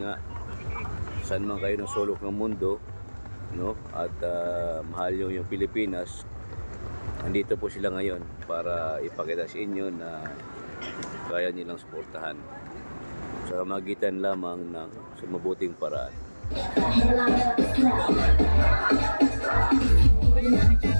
nga, saan man kayo ng sulok ng mundo, no, at mahal nyo yung Pilipinas, nandito po sila ngayon para ipakita sa inyo na kaya nilang suportahan sa magitan lamang ng mabuting paraan.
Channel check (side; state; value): both; inverted; correlation -1.00